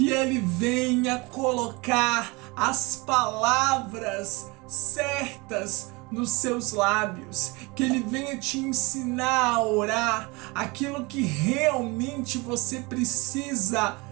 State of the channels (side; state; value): left; quieter; 25.7 dB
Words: ele venha colocar as palavras certas nos seus lábios, que ele venha te ensinar a orar aquilo que realmente você precisa